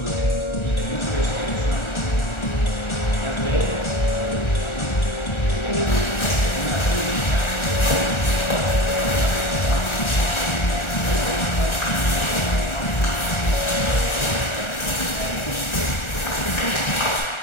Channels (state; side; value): late; right; 1.4 ms